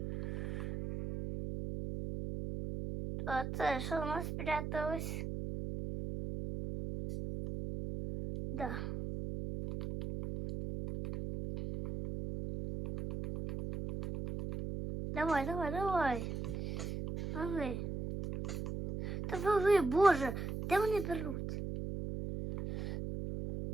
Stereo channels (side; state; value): right; noise; hum, 4 dB below the sound